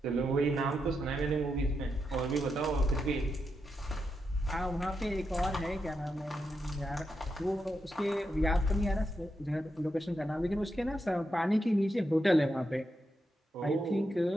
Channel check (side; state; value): both; normal; correlation 0.85